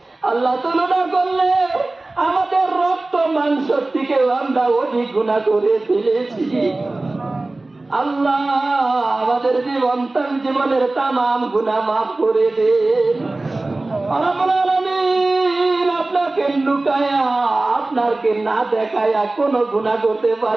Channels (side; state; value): left; quieter; 3.0 dB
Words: আল্লাহ তুলনা করলে আমাদের রক্ত মাংস থেকেও আমরা অধিক গুনাহ করে ফেলেছি। আল্লাহ আমাদের জীবনের তামাম গুনাহ মাফ করে দেন। রব্বুল আলামিন আপনাকে লুকায়া আপনাকে না দেখায়া কোনো গুনাহ করতে